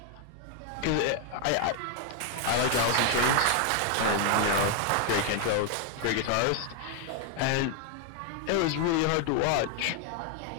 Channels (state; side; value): different; both; correlation 0.00